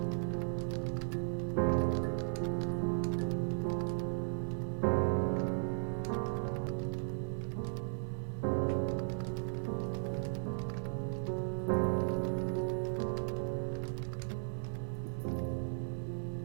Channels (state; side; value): silent; left; digital silence